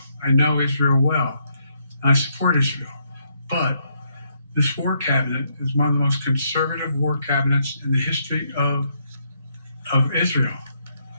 I know Israel well, and I support Israel. But this war cabinet is one of the most conservative war cabinets in the history of Israel.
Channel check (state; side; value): inverted; both; correlation -0.75